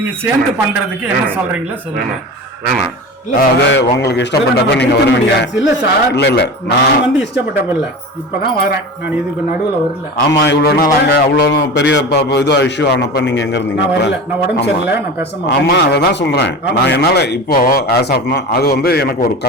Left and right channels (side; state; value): both; normal; correlation 0.31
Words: சேர்ந்து பண்றதுக்கு என்ன சொல்றீங்களா சொல்லுங்க. வேணாம், அது உங்களுக்கு இஷ்டப்பட்டப்ப நீங்க வருவீங்க. இல்ல சார், இல்ல நான் வந்து இஷ்டப்பட்டப்ப இல்ல, இப்பதான் வரேன். நான் இதுக்கு நடுவுல வரல. ஆமா, இவ்வளவு நாள் அங்க அவ்வளவு பெரிய இது இஷ்யூ ஆனப்ப நீங்க எங்க இருந்தீங்க? நான் உடம்பு சரியில்லை, நான் பேச மாட்டேன். ஆமா, அததான் சொல்றேன். நான் என்னால இப்போ ஆஸ் ஆஃப் நவ் அது வந்து எனக்கு ஒரு